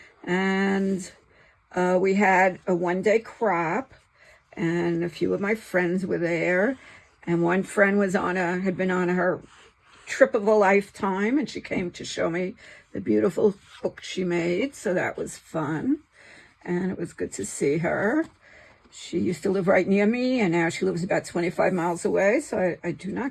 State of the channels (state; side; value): identical; both; correlation 1.00